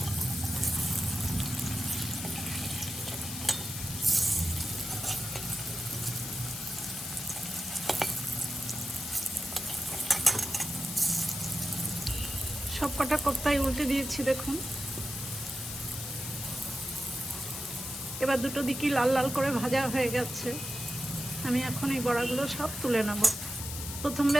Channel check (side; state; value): left; noise; hiss, 7 dB below the sound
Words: সব কটা কোপ্তাই উল্টে দিয়েছি দেখুন। এবার দুটো দিকই লাল লাল করে ভাজা হয়ে গেছে। আমি এখন এই বড়াগুলো সব তুলে নেব। প্রথম